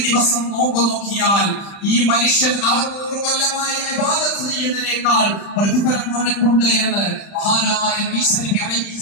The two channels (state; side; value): late; right; 35 ms